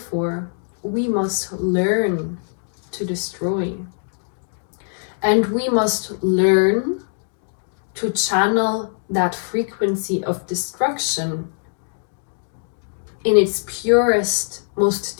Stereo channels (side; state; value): right; silent; digital silence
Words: we must learn to destroy. And we must learn to channel that frequency of destruction in its purest, most